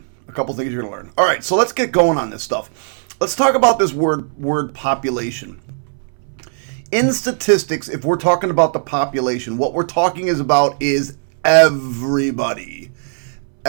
A couple things you're going to learn. Alright, so let's get going on this stuff. Let's talk about this word population. In statistics, if we're talking about the population, what we're talking about is everybody.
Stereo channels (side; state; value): left; silent; 67 dB below the other